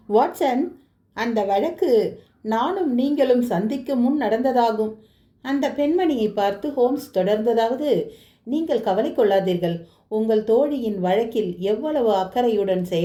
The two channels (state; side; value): identical; both; correlation 1.00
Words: வாட்சன், அந்த வழக்கு நானும் நீங்களும் சந்திக்கும் முன் நடந்ததாகும். அந்த பெண்மணியை பார்த்து ஹோம்ஸ் தொடர்ந்ததாவது, நீங்கள் கவலை கொள்ளாதீர்கள். உங்கள் தோழியின் வழக்கில் எவ்வளவு அக்கறையுடன்